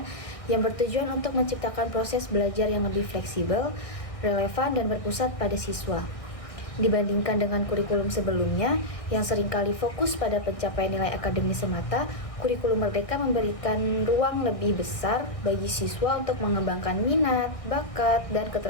yang bertujuan untuk menciptakan proses belajar yang lebih fleksibel, relevan, dan berpusat pada siswa. Dibandingkan dengan kurikulum sebelumnya yang seringkali fokus pada pencapaian nilai akademis semata, kurikulum Merdeka memberikan ruang lebih besar bagi siswa untuk mengembangkan minat, bakat, dan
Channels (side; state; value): right; late; 1.6 ms